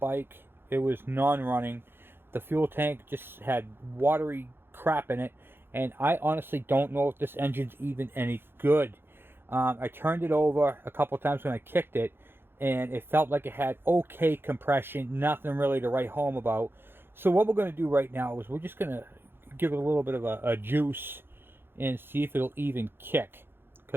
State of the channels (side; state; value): left; late; 0.10 ms